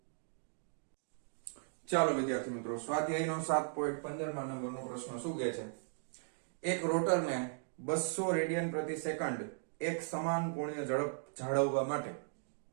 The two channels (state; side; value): silent; left; digital silence